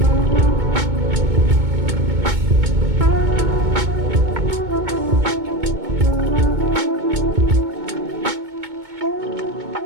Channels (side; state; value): left; late; 2.2 ms